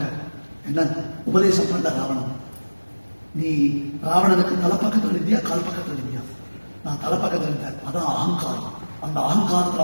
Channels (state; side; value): inverted; both; correlation -1.00